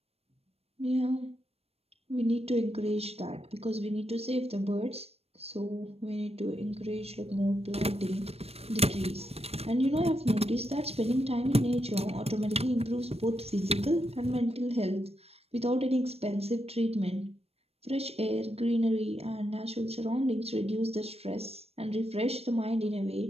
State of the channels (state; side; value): late; left; 0.29 ms